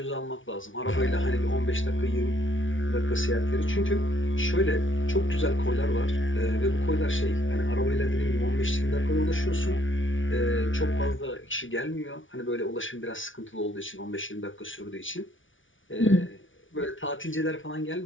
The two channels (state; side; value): late; right; 0.56 ms